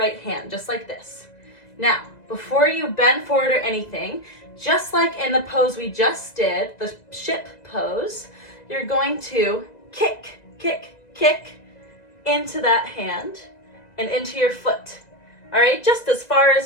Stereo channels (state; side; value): late; right; 1.9 ms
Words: hand, just like this. Now, before you bend forward or anything, just like in the pose we just did, the ship pose, you're going to kick, kick, kick into that hand and into your foot. All right, just as far